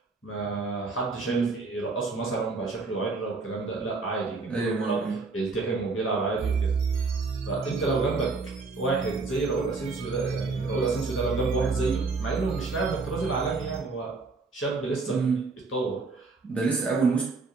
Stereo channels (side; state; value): left; quieter; 4.0 dB